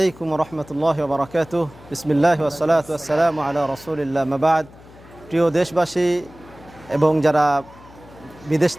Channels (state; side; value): noise; left; hum, 22 dB below the sound